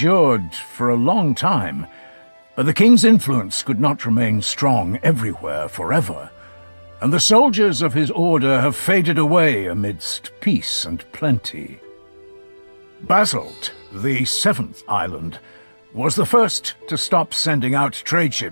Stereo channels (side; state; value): both; inverted; correlation -1.00